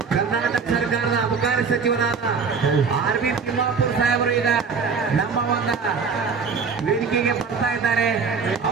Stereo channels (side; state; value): left; quieter; 5.4 dB